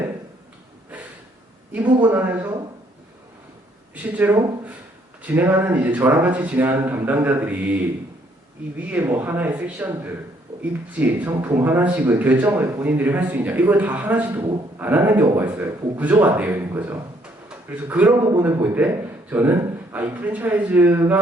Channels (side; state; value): both; normal; correlation 0.67